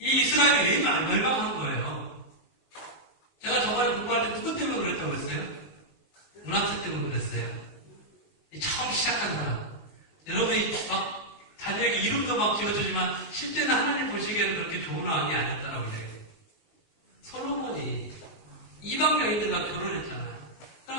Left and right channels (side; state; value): right; late; 19 ms